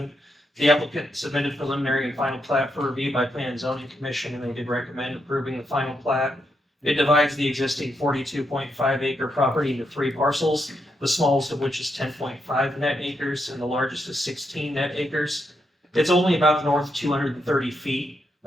The applicant submitted preliminary and final plat for review by Plan and Zoning Commission, and they did recommend approving the final plat. It divides the existing 42.5 acre property into 3 parcels, the smallest of which is 10.5 net acres and the largest is 16 net acres. It's only about north 230 feet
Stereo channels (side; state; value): both; normal; correlation 0.81